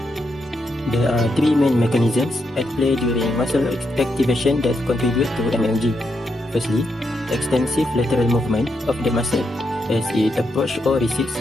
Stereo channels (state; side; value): normal; both; correlation 0.82